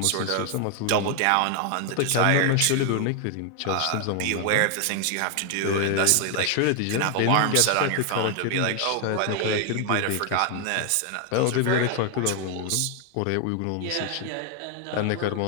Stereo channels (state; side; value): different; both; correlation 0.00